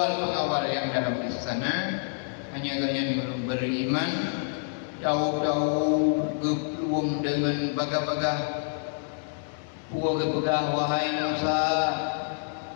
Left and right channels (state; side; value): silent; right; digital silence